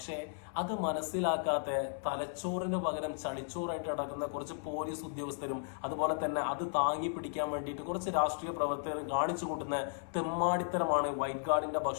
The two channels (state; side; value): silent; right; 54 dB below the other